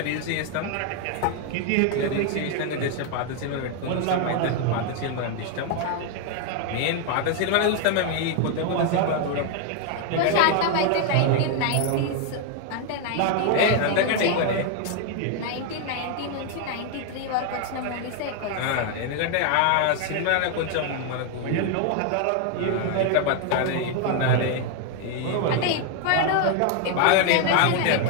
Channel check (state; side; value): different; both; correlation 0.01